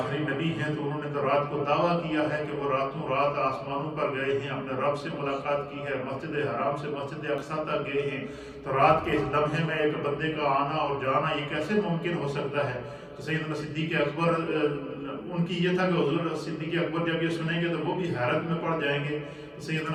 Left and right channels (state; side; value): identical; both; correlation 1.00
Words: نبی ہیں، تو انہوں نے تو رات کو دعویٰ کیا ہے کہ وہ راتوں رات آسمانوں پر گئے ہیں، اپنے رب سے ملاقات کی ہے، مسجد حرام سے مسجد اقصیٰ تک گئے ہیں، تو رات کے اس لمحے میں ایک بندے کا آنا اور جانا یہ کیسے ممکن ہو سکتا ہے؟ تو سیدنا صدیق اکبر ان کی یہ تھا کہ حضور صدیق اکبر جب یہ سنیں گے تو وہ بھی حیرت میں پڑ جائیں گے۔ تو